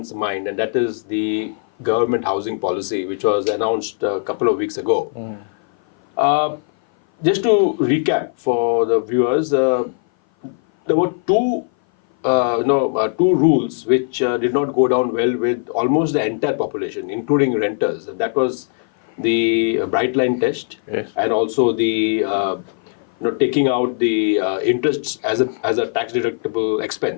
mind, and that is the government housing policy, which was announced a couple of weeks ago. Just to recap for the viewers, there were two rules which did not go down well with almost the entire population, including renters. That was the bright line test, yes, and also the taking out the interests as a tax deductible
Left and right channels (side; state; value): right; silent; 57 dB below the other